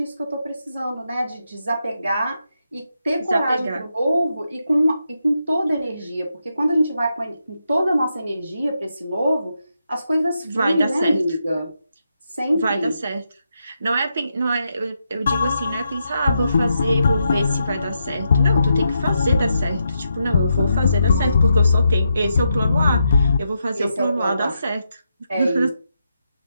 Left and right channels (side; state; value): both; inverted; correlation -0.83